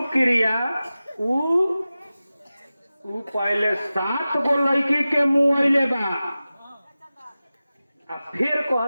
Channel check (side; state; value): both; inverted; correlation -0.96